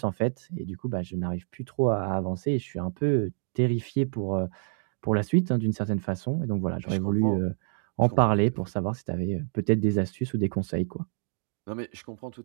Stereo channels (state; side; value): silent; left; digital silence